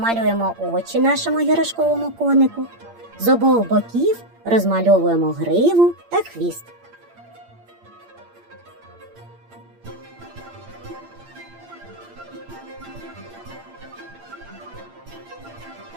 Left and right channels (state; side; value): late; left; 8.7 ms